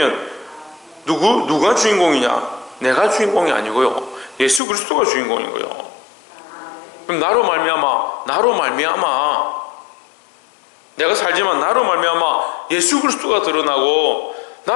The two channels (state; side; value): drops out; right; at 4.6 s